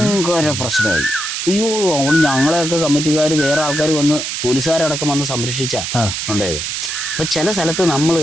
പ്രശ്നമായി. അയ്യോ, അവിടെ ഞങ്ങളെയൊക്കെ കമ്മിറ്റിക്കാർ വേറെ ആൾക്കാർ വന്ന് പോലീസുകാരടക്കം വന്ന് സംരക്ഷിച്ചാ ഉണ്ടായത്. അപ്പം ചില സ്ഥലത്ത് നമ്മൾ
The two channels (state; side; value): noise; right; hiss, 3 dB below the sound